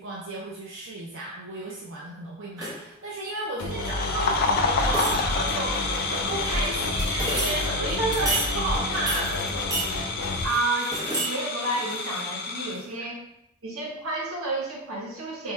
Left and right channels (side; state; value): both; normal; correlation 0.09